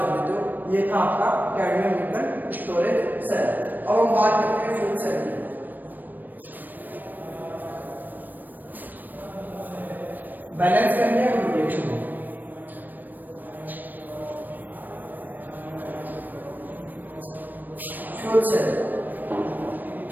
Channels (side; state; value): left; late; 0.089 ms